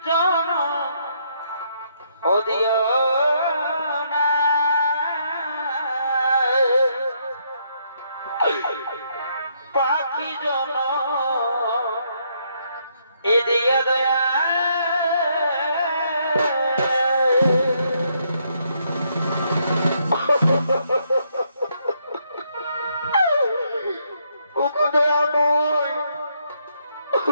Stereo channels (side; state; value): both; inverted; correlation -0.73